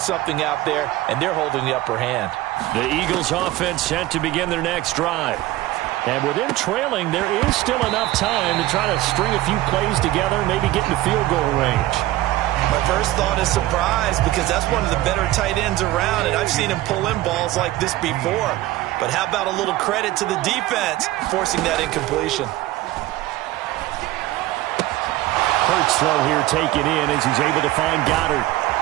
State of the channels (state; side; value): quieter; left; 16.6 dB